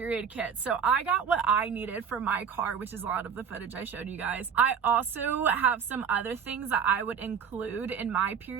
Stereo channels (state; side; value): quieter; left; 7.1 dB